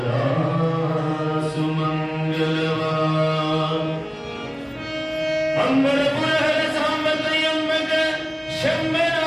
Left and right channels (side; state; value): both; identical; correlation 1.00